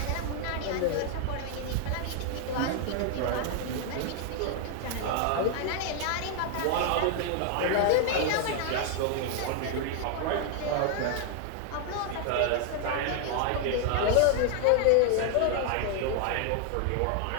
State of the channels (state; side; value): different; both; correlation 0.00